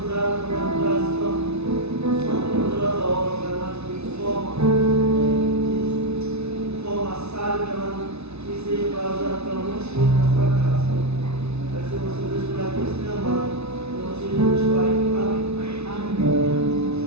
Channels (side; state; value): left; late; 0.80 ms